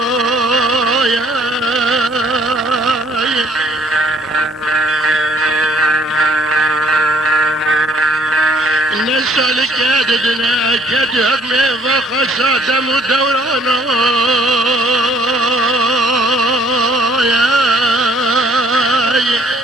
نسألك يا ددنا كدهب ميضا خساتم ودورانا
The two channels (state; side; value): normal; both; correlation 0.62